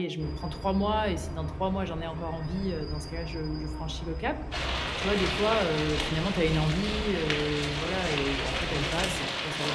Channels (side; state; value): both; identical; correlation 1.00